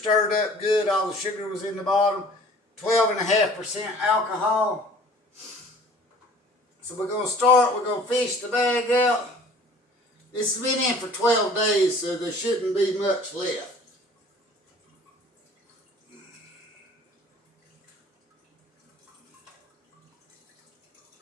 up good. All the sugar was in the bottom. 12.5% alcohol. So we're going to start. We're going to fish the bag out. This has been in for 12 days, so there shouldn't be much left.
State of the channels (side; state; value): both; normal; correlation 0.49